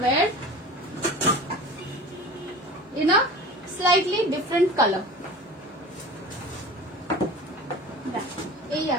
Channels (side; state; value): both; normal; correlation 0.37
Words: wire in a slightly different color। এই